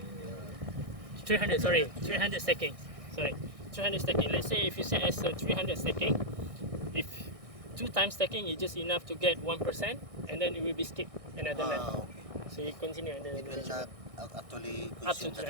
300 stackings. 300 stacking. Let's say if you set as 300 stacking, if 2 times stacking is just enough to get 1%, and then it will be skipped another lap. Okay. So you continue and then It will not actually up to consume the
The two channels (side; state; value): left; late; 1.6 ms